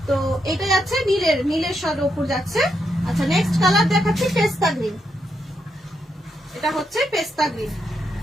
তো এটা যাচ্ছে নীলের সার উপর যাচ্ছে। আচ্ছা, নেক্সট কালার দেখাচ্ছি পেস্তা গ্রিন। এটা হচ্ছে পেস্তা গ্রিন,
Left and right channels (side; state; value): both; normal; correlation 0.81